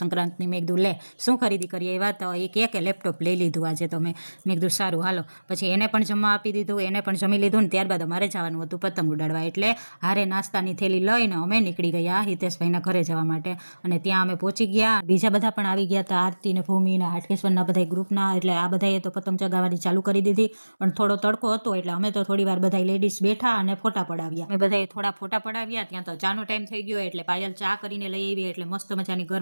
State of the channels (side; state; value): both; inverted; correlation -1.00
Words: સંક્રાંતિની. મેં કીધું લે શું ખરીદી કરી આવ્યા? તો એ કહે કે લેપટોપ લઈ લીધું આજે તો મેં કીધું સારું હાલો. પછી એને પણ જમવા આપી દીધું, એને પણ જમી લીધું ને ત્યારબાદ અમારે જવાનું હતું પતંગ ઉડાડવા. એટલે હારે નાસ્તાની થેલી લઈને અમે નીકળી ગયા હિતેશભાઈના ઘરે જવા માટે. અને ત્યાં અમે પહોંચી ગયા. બીજા બધા પણ આવી ગયા હતા, આરતી ને ભૂમિ ને હાટકેશ્વરના બધા ગ્રુપના. એટલે આ બધાએ તો પતંગ ચગાવવાની ચાલુ કરી દીધી. પણ થોડો તડકો હતો એટલે અમે તો થોડી વાર બધા લેડીઝ બેઠા અને ફોટા પડાવ્યા. અમે બધાએ થોડા ફોટા પડાવ્યા. ત્યાં તો ચાનો ટાઈમ થઈ ગયો એટલે પાયલ ચા કરીને લઈ આવી. એટલે મસ્ત મજાની